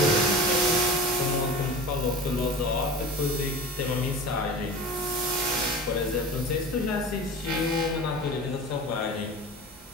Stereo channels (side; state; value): both; normal; correlation 0.34